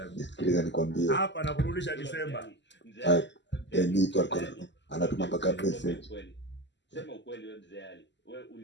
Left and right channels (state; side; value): late; right; 0.52 ms